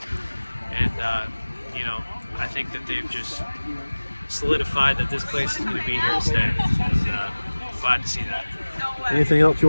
and you know, I think that they've just solidified that this place is going to be here to stay. And glad to see that. Anything else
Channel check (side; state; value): both; inverted; correlation -1.00